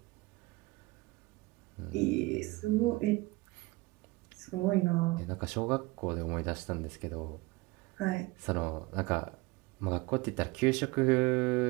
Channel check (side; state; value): left; quieter; 22.3 dB